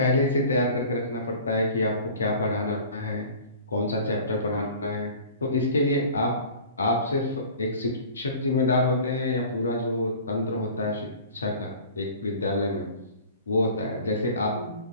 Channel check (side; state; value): both; inverted; correlation -0.44